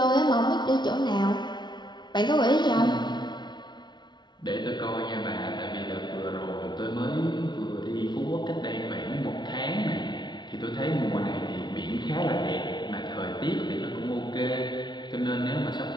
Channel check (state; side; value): late; right; 0.21 ms